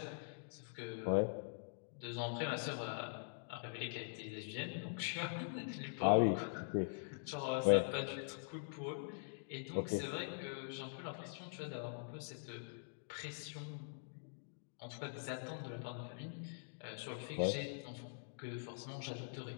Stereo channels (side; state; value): right; silent; digital silence